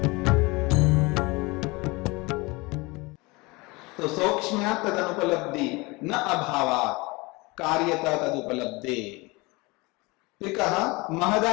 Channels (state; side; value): quieter; right; 24.7 dB